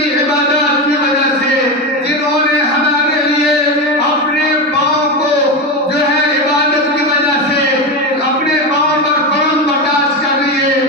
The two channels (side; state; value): both; normal; correlation 0.17